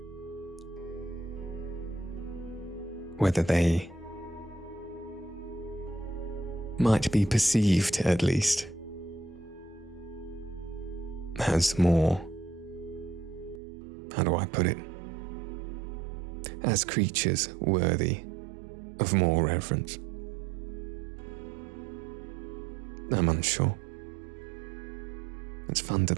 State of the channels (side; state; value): left; drops out; at 13.6 s